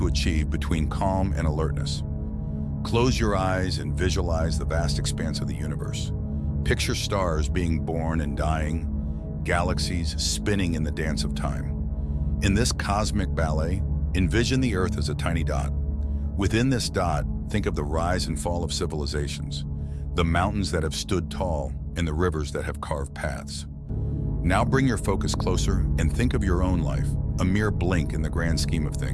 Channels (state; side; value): identical; both; correlation 1.00